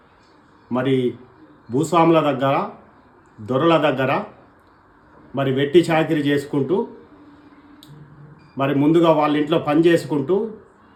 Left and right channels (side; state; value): both; identical; correlation 1.00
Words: మరి భూస్వాముల దగ్గర, దొరల దగ్గర మరి వెట్టి చాకిరి చేసుకుంటూ, మరి ముందుగా వాళ్ళ ఇంట్లో పని చేసుకుంటూ,